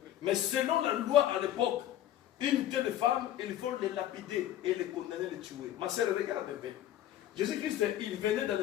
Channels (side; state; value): right; quieter; 12.2 dB